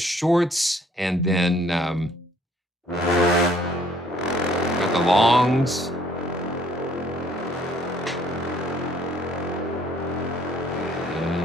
and then got the longs.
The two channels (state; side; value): normal; both; correlation 0.61